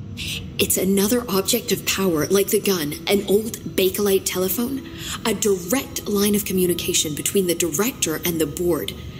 It's another object of power, like the gun, an old Bakelite telephone. A direct line of communication between the director and the board.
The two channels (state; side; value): identical; both; correlation 1.00